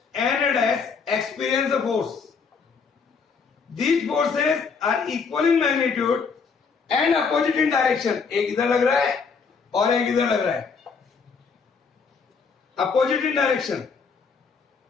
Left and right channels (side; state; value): right; quieter; 5.4 dB